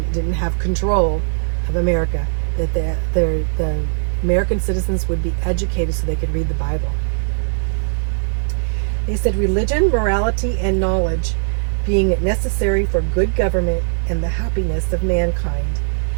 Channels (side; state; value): left; silent; 66 dB below the other